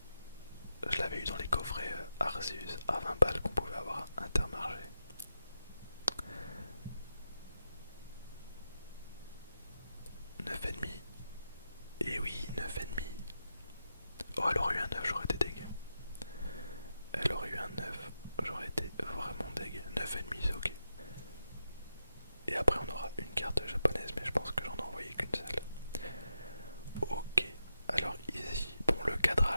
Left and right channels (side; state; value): both; inverted; correlation -0.87